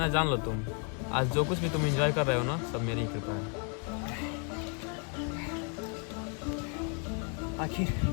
जान लो तुम, आज जो कुछ भी तुम एंजॉय कर रहे हो ना, सब मेरी ही कृपा है।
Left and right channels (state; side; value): quieter; right; 39.0 dB